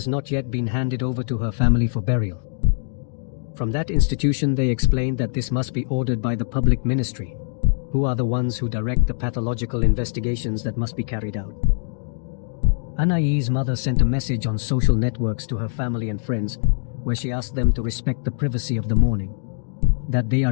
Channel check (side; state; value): right; silent; 64 dB below the other